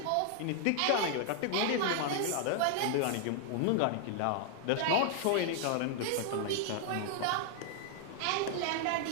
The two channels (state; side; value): different; both; correlation 0.00